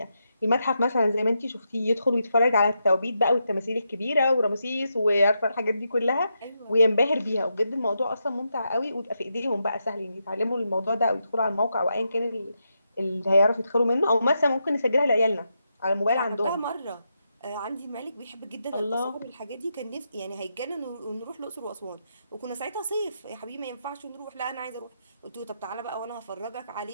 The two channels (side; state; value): both; inverted; correlation -0.84